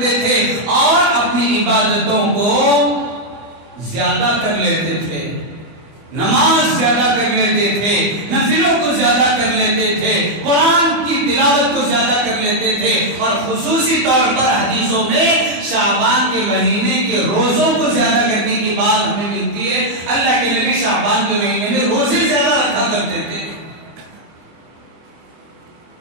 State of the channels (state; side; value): late; left; 24 ms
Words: تھے، اور اپنی عبادتوں کو زیادہ کر لیتے تھے، نماز زیادہ کر لیتے تھے، نفلوں کو زیادہ کر لیتے تھے، قرآن کی تلاوت کو زیادہ کر لیتے تھے، اور خصوصی طور پر حدیثوں میں شعبان کے مہینے کے روزوں کو زیادہ کرنے کی بات ہمیں ملتی ہے۔ اللہ کے نبی شعبان کے مہینے میں روزے زیادہ رکھا کرتے تھے۔